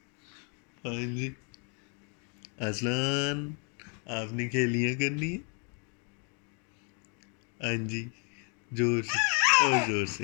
ہاں جی اذلان آپ نے کھیلیاں کرنی ہے. ہاں جی زور سے، اور زور سے،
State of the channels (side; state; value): right; quieter; 38.3 dB